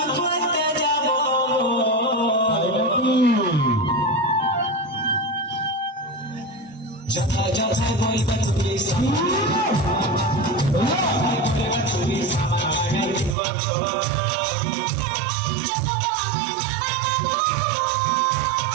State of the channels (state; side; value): drops out; left; at 13.4 s